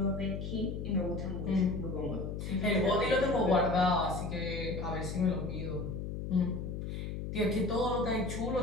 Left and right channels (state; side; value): noise; left; hum, 5 dB below the sound